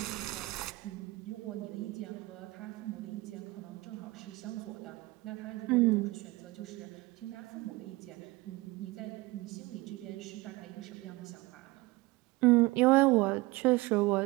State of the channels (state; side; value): quieter; left; 21.6 dB